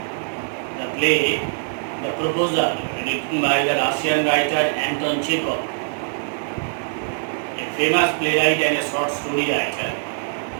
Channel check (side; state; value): left; silent; 64 dB below the other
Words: the play The Proposal, written by the Russian writer Anton Chekhov, a famous playwright and a short story writer.